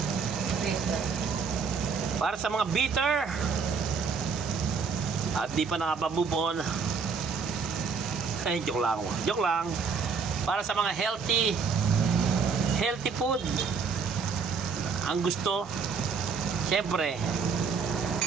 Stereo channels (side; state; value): left; quieter; 5.5 dB